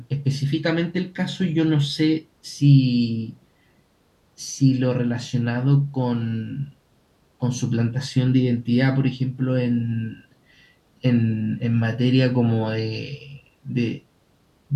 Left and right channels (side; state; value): both; identical; correlation 1.00